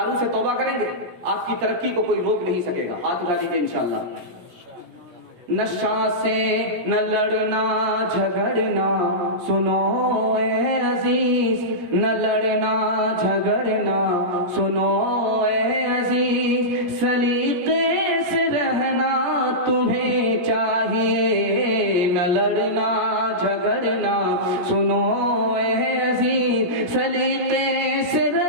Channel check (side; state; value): left; late; 17 ms